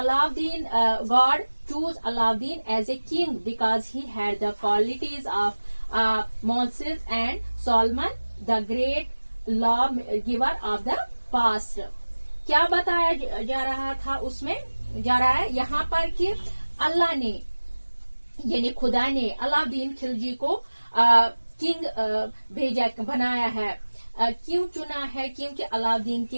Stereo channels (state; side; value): inverted; both; correlation -1.00